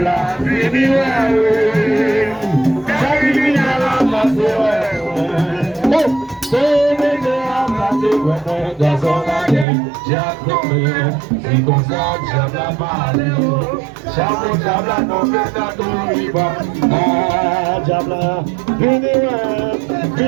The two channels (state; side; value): drops out; left; at 9.7 s